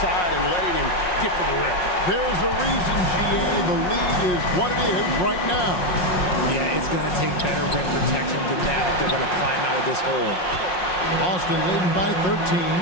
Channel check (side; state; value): right; late; 5.6 ms